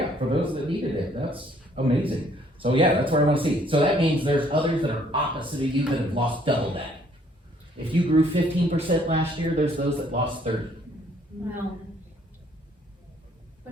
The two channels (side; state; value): both; normal; correlation 0.63